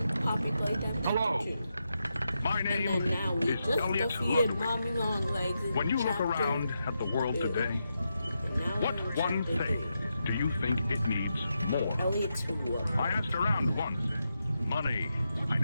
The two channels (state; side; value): inverted; both; correlation -0.86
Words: Poppy Playtime Chapter 2. My name And then now we is just Elliot defeated Ludwig. Mommy Longlegs in When you look chapter around at the world 2. today, And now what we're in one chapter thing 3. do you think it needs more? Elliot's who? I asked around once. Money, I